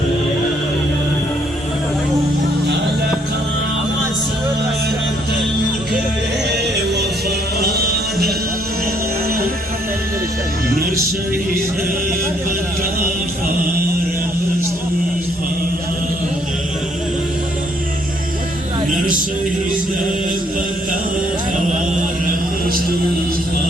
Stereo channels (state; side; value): normal; both; correlation 0.68